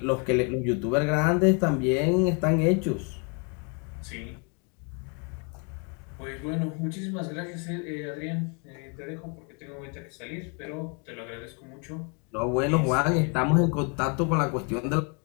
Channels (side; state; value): right; quieter; 36.6 dB